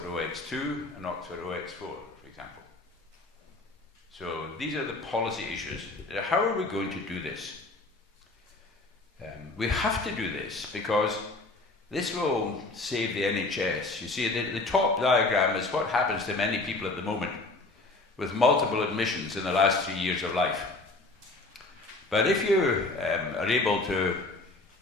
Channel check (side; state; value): right; quieter; 3.2 dB